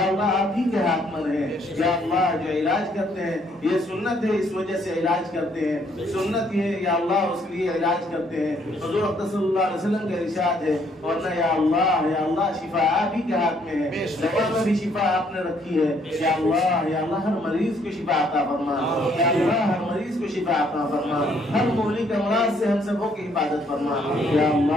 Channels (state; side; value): normal; both; correlation 0.67